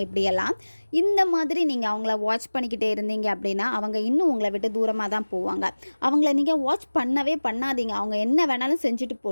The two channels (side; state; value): both; inverted; correlation -1.00